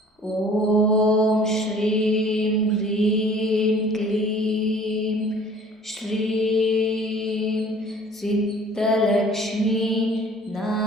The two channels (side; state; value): both; normal; correlation 0.51